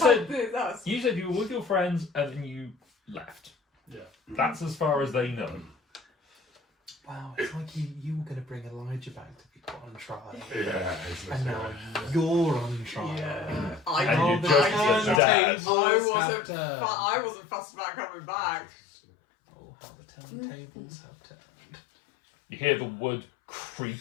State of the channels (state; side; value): drops out; right; at 15.2 s